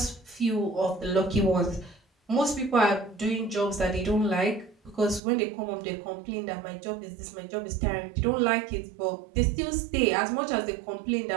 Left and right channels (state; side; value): drops out; left; at 5.2 s